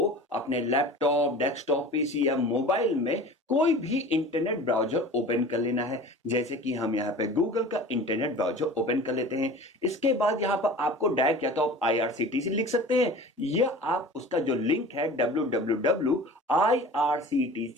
अपने लैपटॉप, डेस्कटॉप, पीसी या मोबाइल में कोई भी इंटरनेट ब्राउजर ओपन कर लेना है। जैसे कि हम यहाँ पे गूगल का इंटरनेट ब्राउजर ओपन कर लेते हैं। इसके बाद यहाँ पर आपको डायरेक्ट या तो आप आईआरसीटीसी लिख सकते हैं या आप उसका जो लिंक है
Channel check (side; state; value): both; normal; correlation 0.39